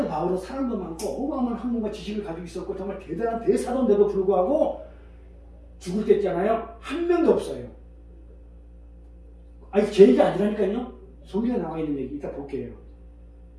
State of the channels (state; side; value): identical; both; correlation 1.00